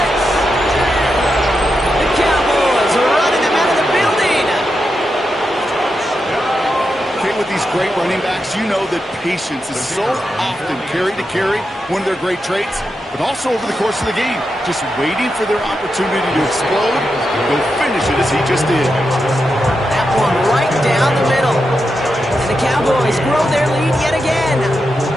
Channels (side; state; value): both; normal; correlation 0.87